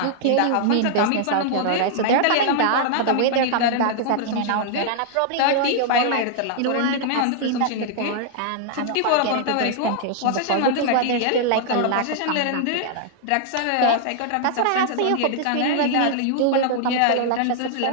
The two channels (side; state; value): both; different; correlation -0.01